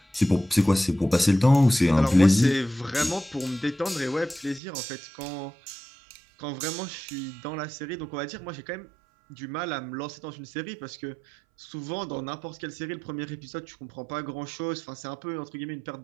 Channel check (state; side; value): drops out; left; at 4.6 s